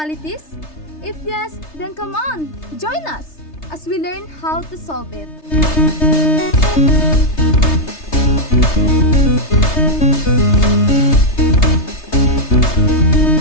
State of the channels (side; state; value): right; late; 3.3 ms